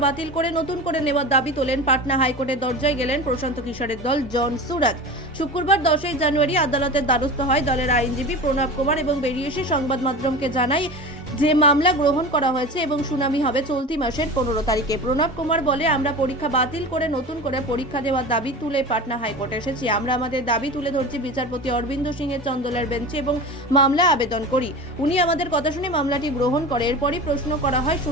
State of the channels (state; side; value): normal; both; correlation 0.31